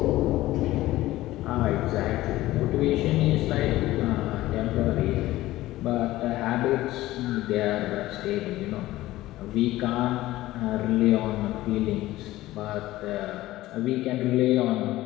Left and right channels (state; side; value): quieter; right; 16.5 dB